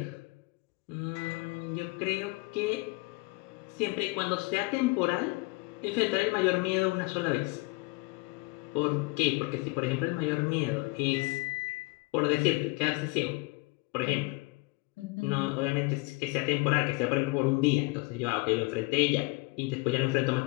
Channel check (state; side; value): quieter; right; 26.1 dB